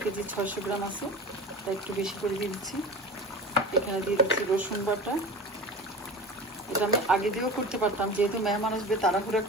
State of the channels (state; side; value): normal; both; correlation 0.32